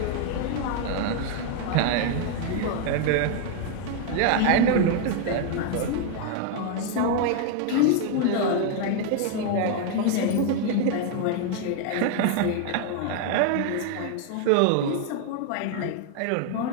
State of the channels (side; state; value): both; different; correlation 0.00